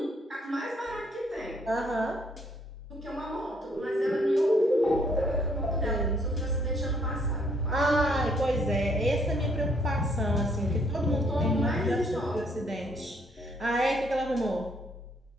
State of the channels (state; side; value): normal; both; correlation 0.67